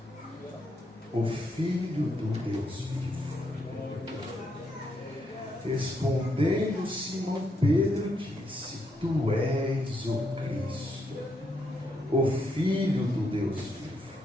o Filho do Deus vivo. Respondendo, Simão Pedro disse: tu és o Cristo, o Filho do Deus vivo.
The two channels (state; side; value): normal; both; correlation 0.78